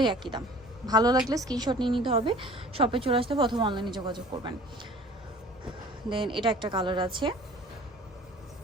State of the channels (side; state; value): both; normal; correlation 0.48